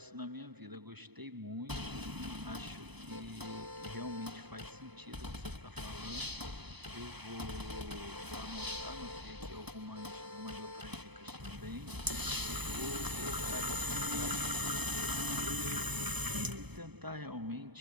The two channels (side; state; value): left; late; 0.99 ms